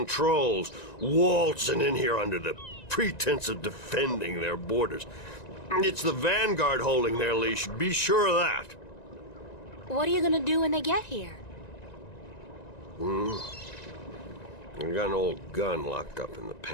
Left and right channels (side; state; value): right; late; 1.9 ms